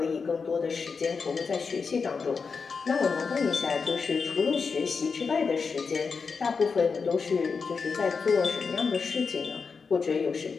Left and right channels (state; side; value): quieter; right; 5.2 dB